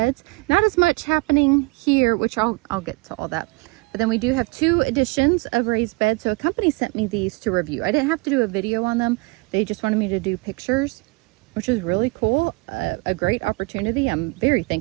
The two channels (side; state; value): left; quieter; 27.1 dB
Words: Not as much happening here, which I'll get to all that. But then we do have 2 additions of raised beds. So a company sent me these to review. I didn't have to do a video on them. They just wanted me to do pictures, which is really cool. A great opportunity. I'm very